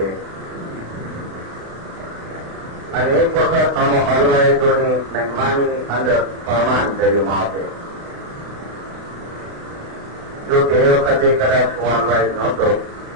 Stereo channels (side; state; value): left; late; 35 ms